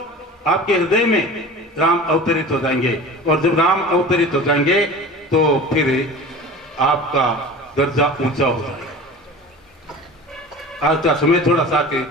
आपके हृदय में राम अवतरित हो जाएंगे, और जब राम अवतरित हो जाएंगे तो फिर आपका दर्जा ऊंचा हो जाएगा। आज का समय थोड़ा सा के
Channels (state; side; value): normal; both; correlation 0.36